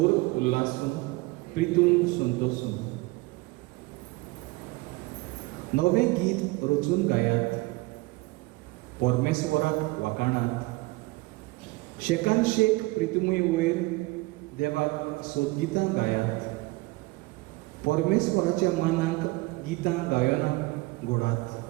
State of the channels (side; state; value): left; quieter; 22.8 dB